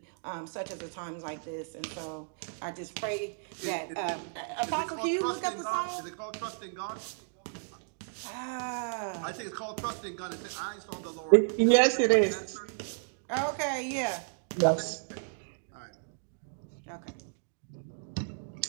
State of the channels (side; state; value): left; silent; digital silence